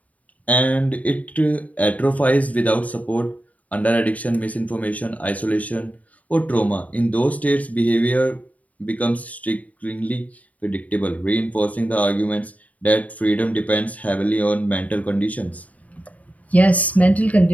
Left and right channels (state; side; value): late; right; 0.071 ms